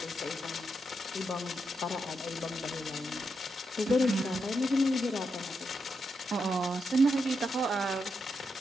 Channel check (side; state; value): both; normal; correlation 0.83